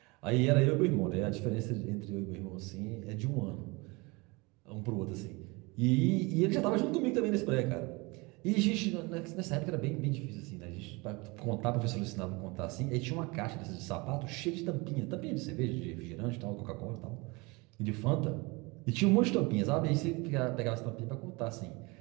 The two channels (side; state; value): left; quieter; 26.1 dB